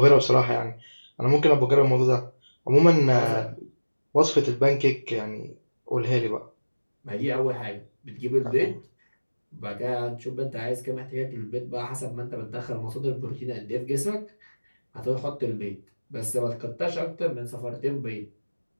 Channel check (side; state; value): both; inverted; correlation -1.00